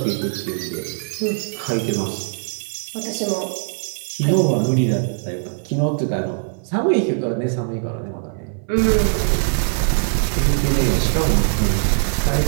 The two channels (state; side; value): silent; left; 60 dB below the other